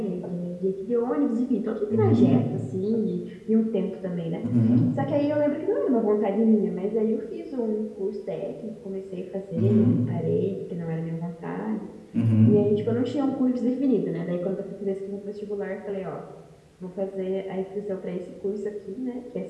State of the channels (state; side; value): identical; both; correlation 1.00